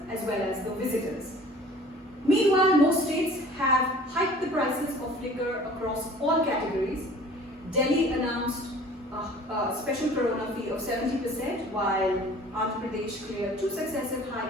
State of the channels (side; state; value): both; normal; correlation 0.47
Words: as well as the visitors. Meanwhile, most states have hiked the prices of liquor across all categories. Delhi announced a special corona fee of 70%, while Andhra Pradesh cleared 2 successive